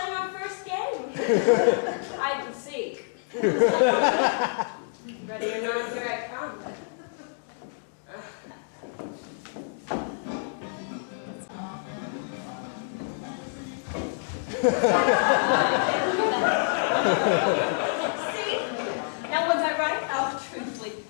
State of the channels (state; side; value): silent; right; digital silence